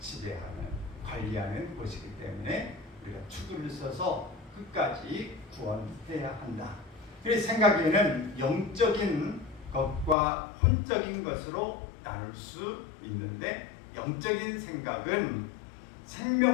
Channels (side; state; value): right; drops out; at 10.2 s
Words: 관리하는 곳이기 때문에 우리가 투구를 써서 끝까지 구원해야 한다. 그래서 생각에는 영적인 것과 혼적인 것으로 나눌 수 있는데, 영적인 생각은